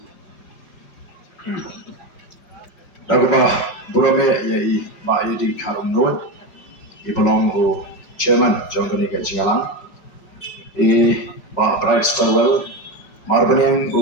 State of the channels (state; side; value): late; right; 5.1 ms